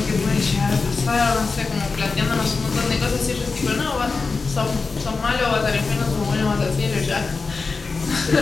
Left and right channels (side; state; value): right; quieter; 4.3 dB